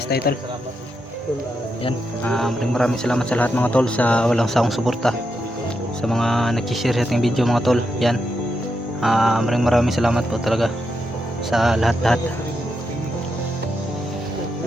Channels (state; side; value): normal; both; correlation 0.84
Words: tayo tol. Salamat. Yan, maraming salamat sa lahat mga tol sa walang sawang suporta. Sa mga nag-share sa ating video mga tol. Yan, maraming salamat po talaga sa lahat-lahat.